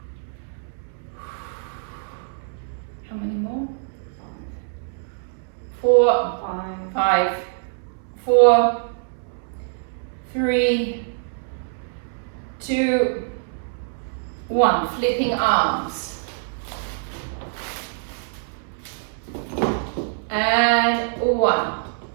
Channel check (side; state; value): left; silent; 62 dB below the other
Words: How many more? 4, 5, 4, 3, 2, 1. Flipping arms. And 1,